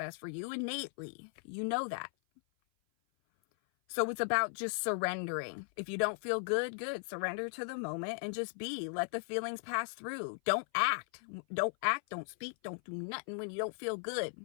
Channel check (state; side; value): silent; right; 53 dB below the other